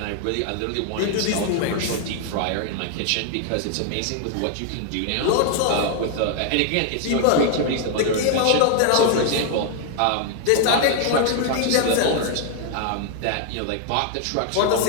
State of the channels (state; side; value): different; both; correlation 0.00